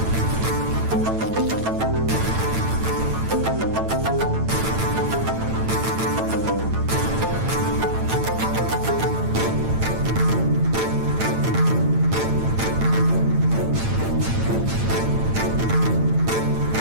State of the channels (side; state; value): left; late; 9.0 ms